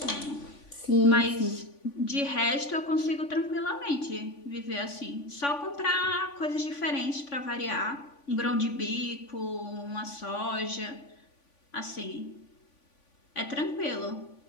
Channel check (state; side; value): late; right; 3.5 ms